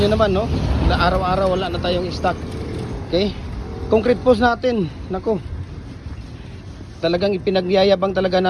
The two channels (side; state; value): both; identical; correlation 1.00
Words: naman, no? Na araw-araw wala na tayong stock. Okay? Concrete post natin, nako. Talagang ipinagyayabang talaga